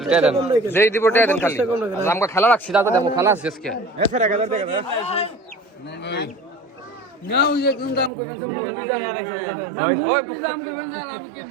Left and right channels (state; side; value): drops out; left; at 8.1 s